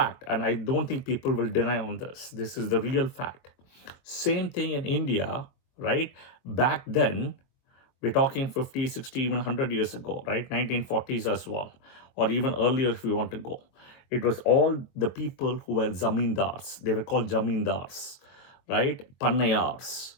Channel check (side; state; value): right; late; 23 ms